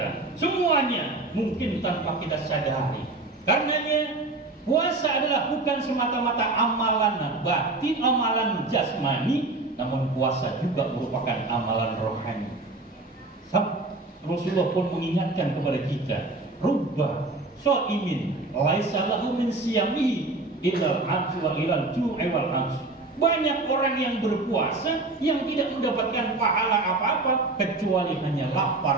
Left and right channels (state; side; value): quieter; left; 3.1 dB